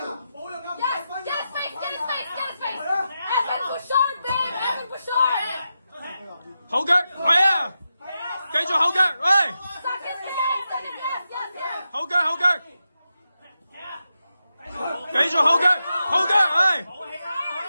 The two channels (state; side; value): inverted; both; correlation -0.89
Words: 冇用㗎。後腳，係啊，繼續後腳，喂，後腳，後腳，繼續後腳，後腳，係，